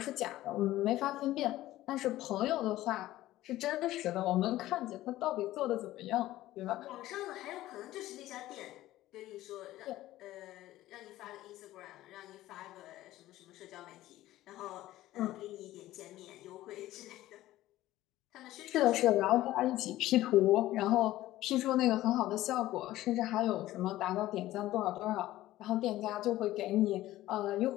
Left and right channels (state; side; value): quieter; right; 15.5 dB